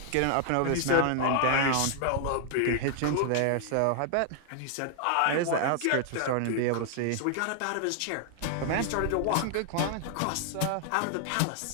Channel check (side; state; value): both; different; correlation 0.00